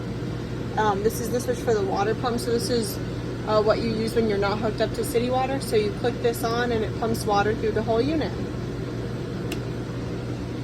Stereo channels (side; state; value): both; identical; correlation 1.00